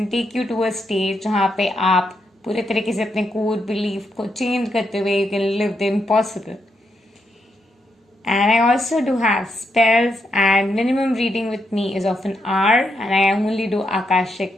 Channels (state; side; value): normal; both; correlation 0.81